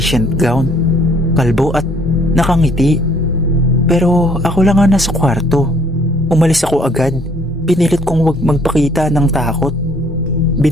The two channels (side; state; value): both; normal; correlation 0.62